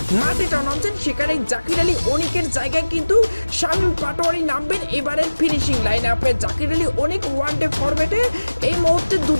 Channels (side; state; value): both; inverted; correlation -1.00